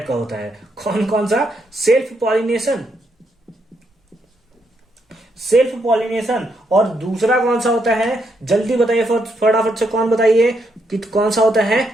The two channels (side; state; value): both; normal; correlation 0.78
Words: का होता है। कौन कौन सा? सेल्फ पॉलिनेशन और दूसरा कौन सा होता है? जल्दी बताइए फटाफट से, कौन बताइए कि कौन सा होता है?